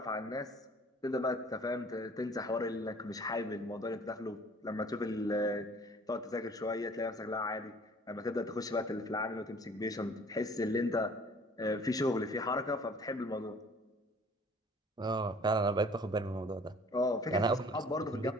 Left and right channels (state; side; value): normal; both; correlation 0.52